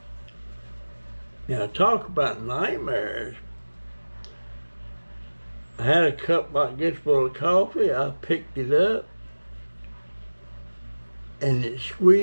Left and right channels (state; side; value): inverted; both; correlation -1.00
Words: now talk about nightmares. I had a cup like this full of coffee. I picked it up and it